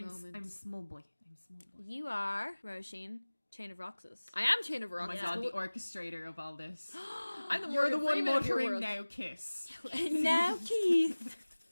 I'm small boy. I'm small boy. you are Roisin, Chain-of-Roxas. I am Chain of Oh Roxas. my God, the orchestrator of all this. I'm You're the one Freeman of your muttering world. now, kiss. Now, Keith.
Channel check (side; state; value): both; inverted; correlation -1.00